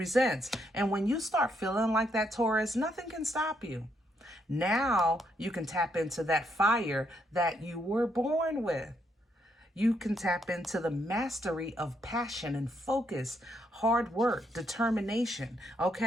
And when you start feeling like that, Taurus, nothing can stop you. Now you can tap into that fire that you were born with. You can tap into the mastery of passion and focus, hard work, determination,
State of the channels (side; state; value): both; normal; correlation 0.75